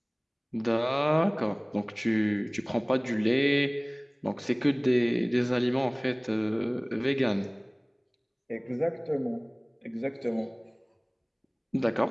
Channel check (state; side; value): identical; both; correlation 1.00